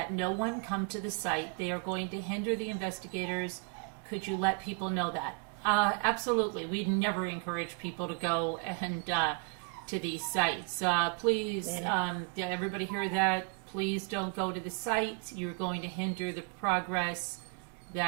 no one come to the site. They are going to hinder the investigators. Could you let people know that? Absolutely. We never encourage people to go and to these sites. Please, everybody hear that? Please don't go to the site. You're going to hinder the progress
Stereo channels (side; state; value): left; quieter; 34.8 dB